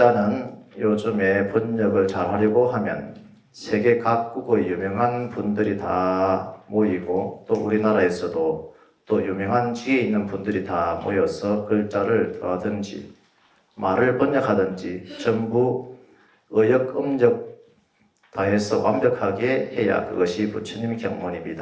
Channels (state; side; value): identical; both; correlation 1.00